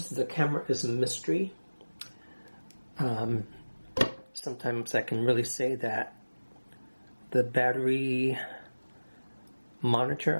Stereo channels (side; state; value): both; inverted; correlation -1.00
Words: the camera is a mystery. Sometimes I can really say that the battery